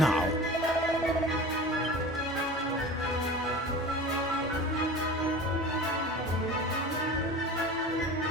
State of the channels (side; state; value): both; normal; correlation 0.36